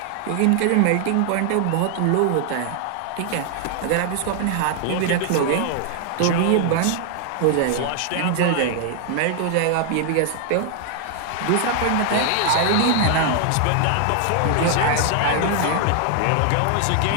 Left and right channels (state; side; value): different; both; correlation 0.00